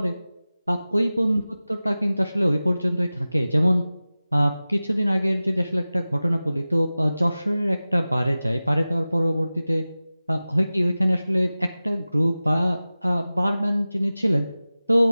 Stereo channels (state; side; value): inverted; both; correlation -0.96